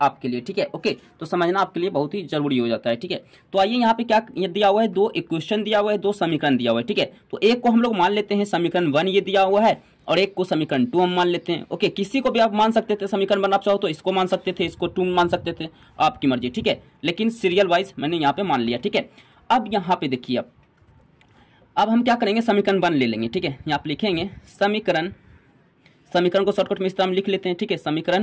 आपके लिए। ठीक है, ओके, तो समझना आपके लिए बहुत ही जरूरी हो जाता है। ठीक है, तो आइए यहाँ पे क्या ये दिया हुआ है, 2 इक्वेशन दिया हुआ है, 2 समीकरण दिया हुआ है। ठीक है, तो एक को हम लोग मान लेते हैं समीकरण 1 ये दिया हुआ है और एक को समीकरण 2 हम मान लेते हैं। ओके, किसी को भी आप मान सकते थे समीकरण 1, आप चाहो तो इसको मान सकते थे, इसको 2 मान सकते थे, आपकी मर्जी। ठीक है, लेकिन सीरियल वाइज मैंने यहाँ पे मान लिया। ठीक है, अब यहाँ पे देखिए, अब हम क्या करेंगे, समीकरण 1 ले लेंगे। ठीक है, यहाँ पे लिखेंगे समीकरण को शॉर्टकट में इस तरह हम लिख लेते हैं। ठीक है,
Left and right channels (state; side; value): identical; both; correlation 1.00